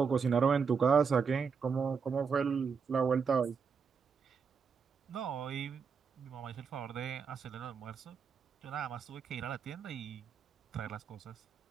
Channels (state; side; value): quieter; left; 5.9 dB